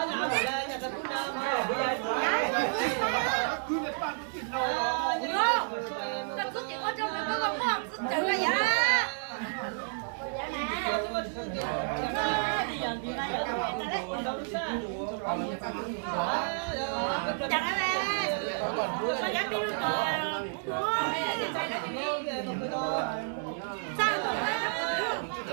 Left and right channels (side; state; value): left; silent; digital silence